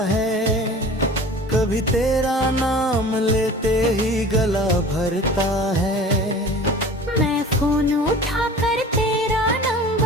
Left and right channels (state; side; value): normal; both; correlation 0.41